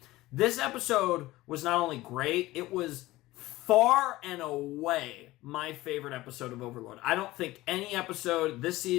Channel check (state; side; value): quieter; right; 18.1 dB